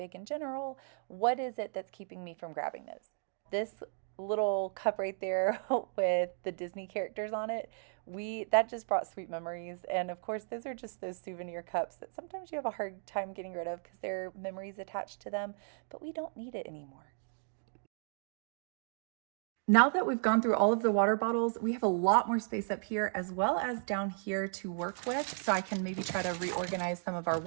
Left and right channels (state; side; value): silent; left; digital silence